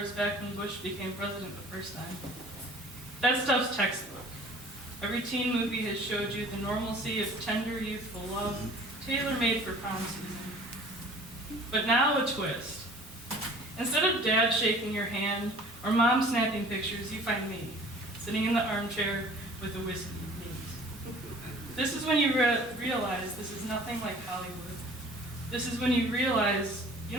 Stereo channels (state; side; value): normal; both; correlation 0.49